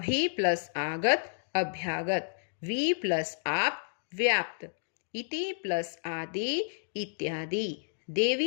प्लस आगत, अभ्यागत। वी प्लस आप, व्याप्त। इति प्लस आदि, इत्यादि।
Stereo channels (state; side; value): silent; right; digital silence